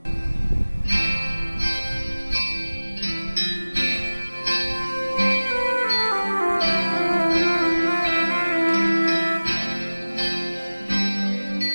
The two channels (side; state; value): both; inverted; correlation -1.00